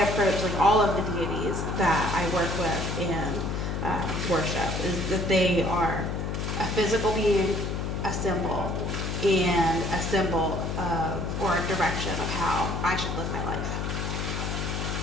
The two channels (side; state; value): left; noise; hum, 2 dB below the sound